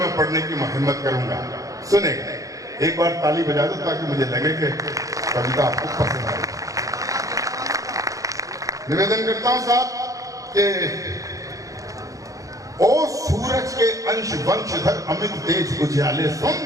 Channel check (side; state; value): left; late; 0.16 ms